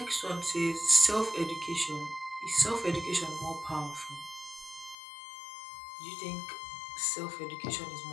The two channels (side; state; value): right; drops out; at 5.0 s